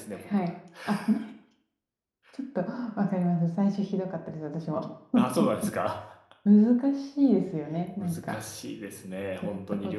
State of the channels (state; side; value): identical; both; correlation 1.00